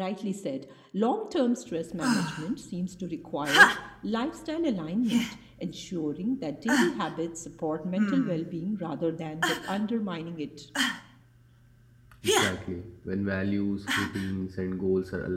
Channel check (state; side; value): identical; both; correlation 1.00